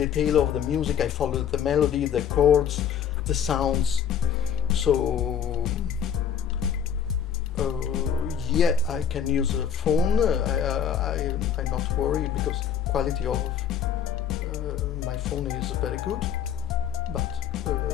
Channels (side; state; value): right; quieter; 8.5 dB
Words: of the music, I follow the melody, the chords, the sounds. So yeah, I can use a phone. I'm not worried because quality of my phone is very good, but